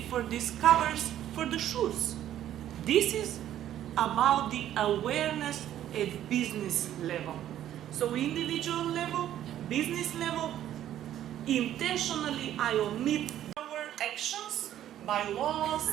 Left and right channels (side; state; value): left; quieter; 11.8 dB